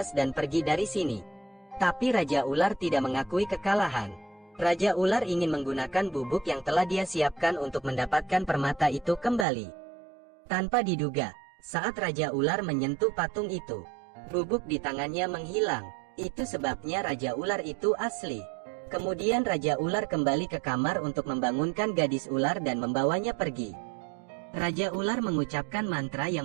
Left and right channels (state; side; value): drops out; left; at 9.5 s